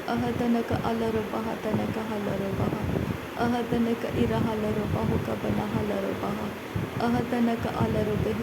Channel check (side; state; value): both; identical; correlation 1.00